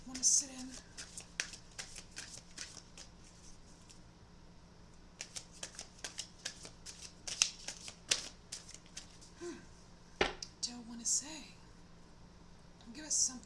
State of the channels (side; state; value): both; identical; correlation 1.00